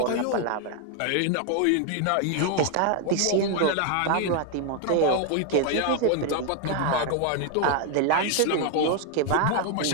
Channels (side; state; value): both; different; correlation 0.00